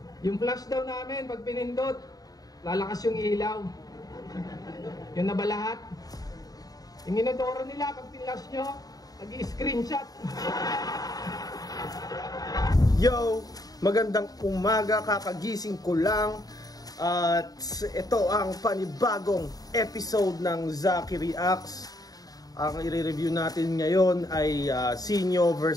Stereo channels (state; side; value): late; right; 0.18 ms